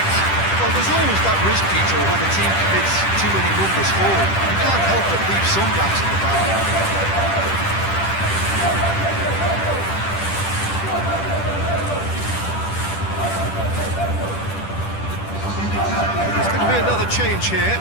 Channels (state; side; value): late; right; 10 ms